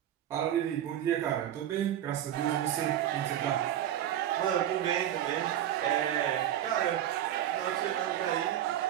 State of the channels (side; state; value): left; quieter; 11.4 dB